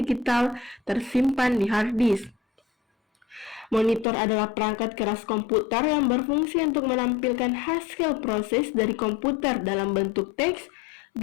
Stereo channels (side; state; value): right; drops out; at 4.0 s